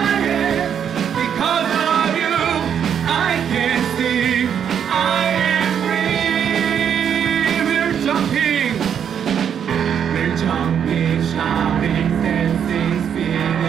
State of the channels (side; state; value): left; quieter; 8.3 dB